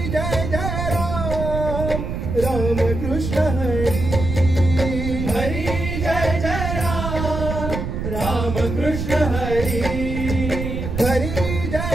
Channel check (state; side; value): noise; right; rumble, 4 dB below the sound